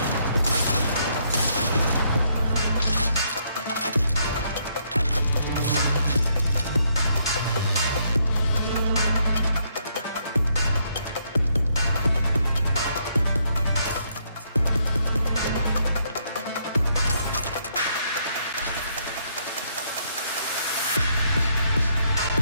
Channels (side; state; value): both; inverted; correlation -0.72